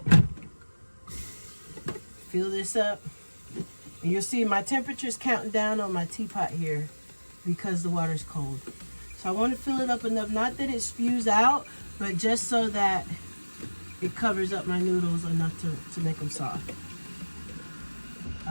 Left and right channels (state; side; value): inverted; both; correlation -1.00